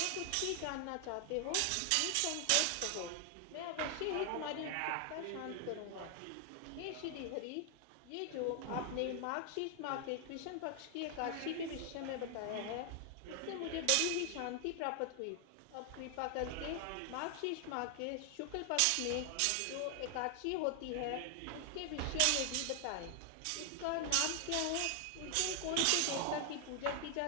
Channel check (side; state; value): both; different; correlation 0.00